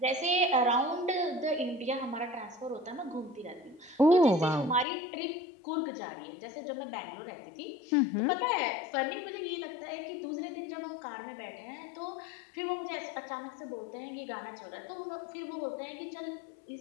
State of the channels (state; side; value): drops out; right; at 4.9 s